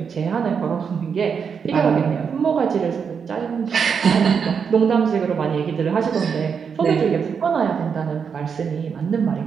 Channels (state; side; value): quieter; left; 6.5 dB